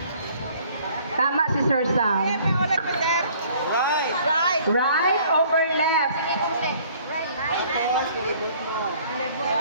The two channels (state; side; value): inverted; both; correlation -0.56